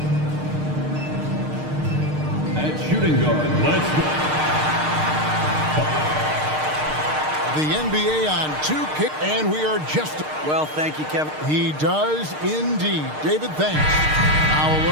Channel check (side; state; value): left; late; 6.5 ms